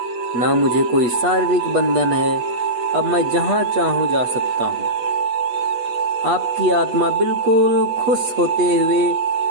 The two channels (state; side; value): late; left; 8.4 ms